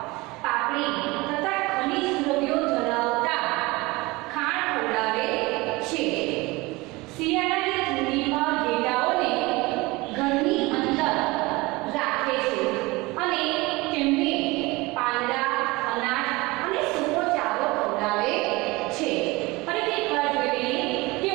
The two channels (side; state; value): left; quieter; 22.7 dB